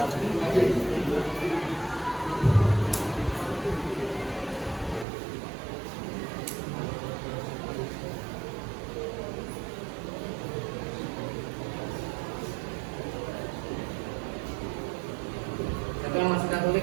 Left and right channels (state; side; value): drops out; left; at 5.1 s